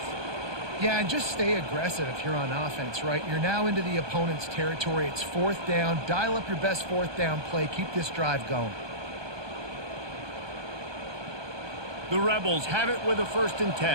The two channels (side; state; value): left; late; 1.2 ms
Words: Yeah, and just stay aggressive if you're on offense, right? You're now into the opponent's territory. It's 4th down. Dial up your best 4th down play. Keep this drive going. The Rebels have it with a 1st and